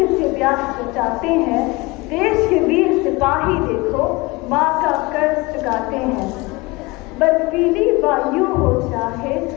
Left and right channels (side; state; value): right; quieter; 23.6 dB